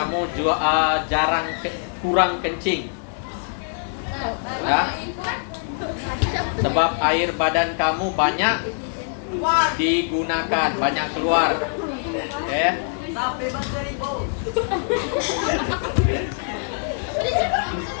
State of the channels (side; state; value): right; silent; digital silence